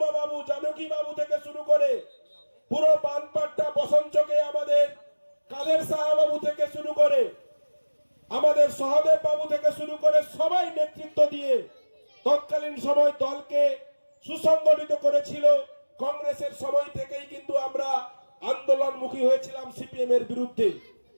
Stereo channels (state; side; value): inverted; both; correlation -1.00